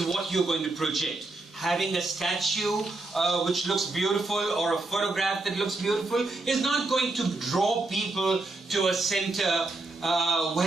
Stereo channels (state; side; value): quieter; left; 3.1 dB